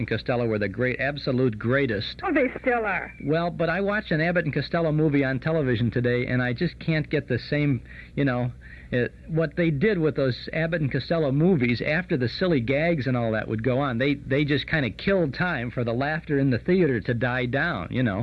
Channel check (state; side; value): identical; both; correlation 1.00